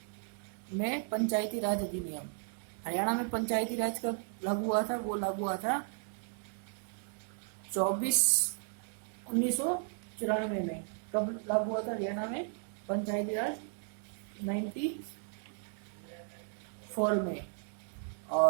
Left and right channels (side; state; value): left; silent; 55 dB below the other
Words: में पंचायती राज अधिनियम। हरियाणा में पंचायती राज कब लागू हुआ था? वो लागू हुआ था 1994 में। कब लागू हुआ था हरियाणा में पंचायती राज? 94 में।